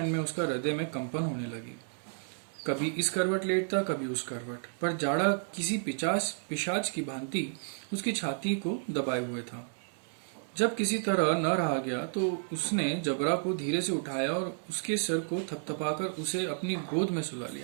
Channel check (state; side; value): silent; left; 57 dB below the other